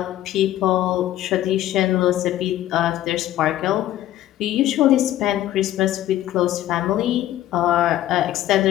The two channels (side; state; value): right; quieter; 13.2 dB